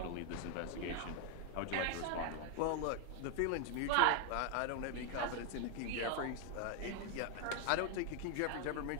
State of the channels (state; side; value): different; both; correlation 0.01